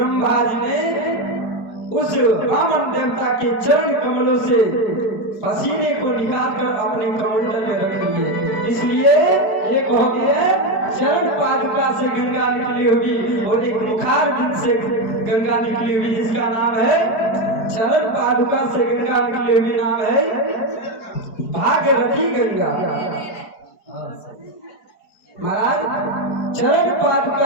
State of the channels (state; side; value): late; right; 4.6 ms